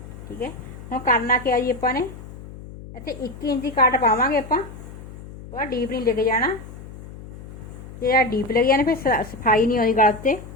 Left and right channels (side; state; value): left; noise; hum, 15 dB below the sound